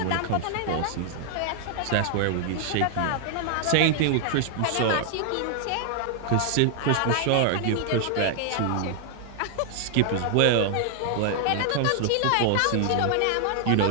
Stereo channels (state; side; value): different; both; correlation 0.00